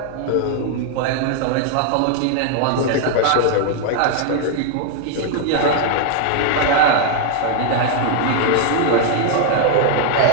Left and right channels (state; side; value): different; both; correlation 0.00